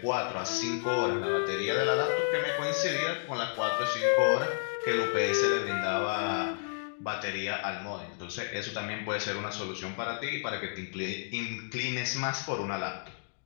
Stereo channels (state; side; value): silent; right; digital silence